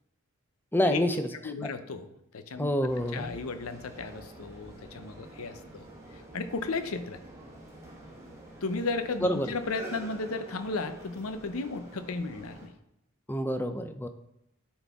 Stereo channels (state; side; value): normal; both; correlation 0.47